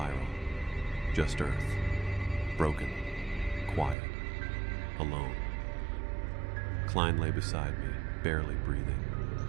just Earth, broken, quiet, alone. Klein lay beside me, barely breathing.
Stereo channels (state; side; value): drops out; left; at 4.0 s